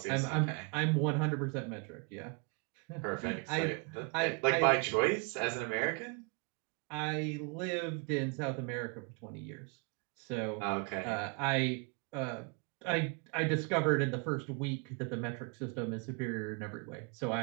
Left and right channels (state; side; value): quieter; left; 34.3 dB